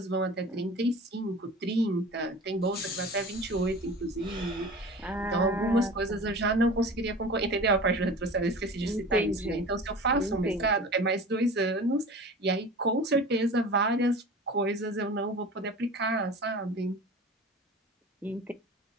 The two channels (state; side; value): normal; both; correlation 0.37